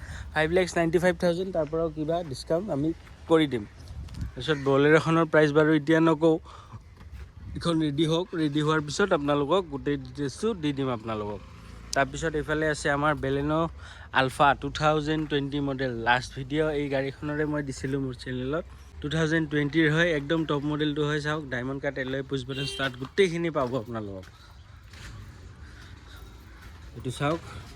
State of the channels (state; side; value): identical; both; correlation 1.00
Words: 5,95,000 তাৰ পৰাও কিবা ডিছকাউণ্ট আমি কৰি দিম তাৰপিছত বলেৰ'খনৰ প্ৰাইচ বাৰু এতিয়া নকওঁ এইখন ৰেডি হওক ৰেডি হোৱাৰ পিছত আপোনালোকক গোটেই ডিটেইলছটো দি দিম আপোনালোকক তাৰপিছত এইফালে আছে আমাৰ Baleno Alpha 2020 model last video' এই গাড়ীখনৰে মই দিছিলোঁ মোৰ চেনেলত 2020ৰ হয় একদম টপ মডেলটো হয় চাওক diamond cut alloy push button start গোটেইখিনি পাব আপোনালোকক এইটো চাওক